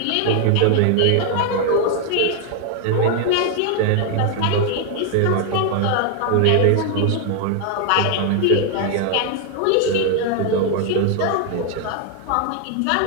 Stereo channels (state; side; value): different; both; correlation 0.00